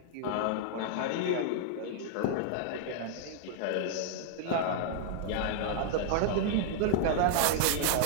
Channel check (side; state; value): both; different; correlation -0.01